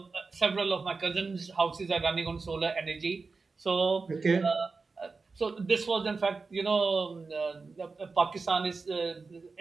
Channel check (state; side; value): quieter; left; 4.3 dB